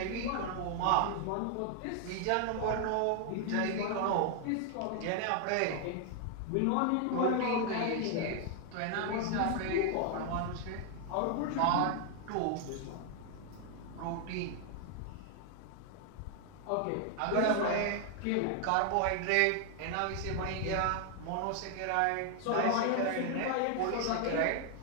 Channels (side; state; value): both; different; correlation 0.00